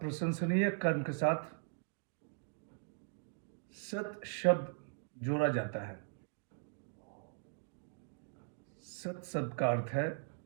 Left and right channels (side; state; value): left; silent; digital silence